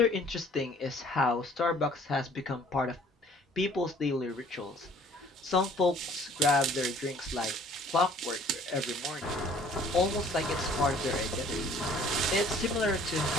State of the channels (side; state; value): both; normal; correlation 0.55